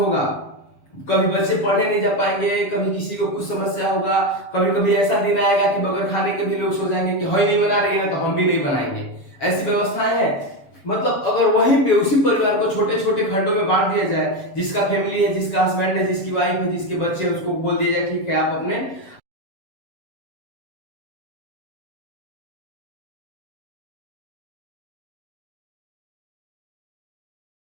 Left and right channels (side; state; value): right; late; 7.3 ms